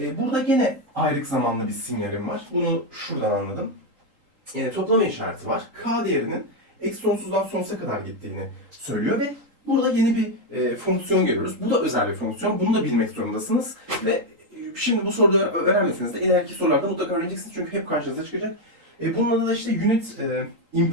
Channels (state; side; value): late; left; 3.8 ms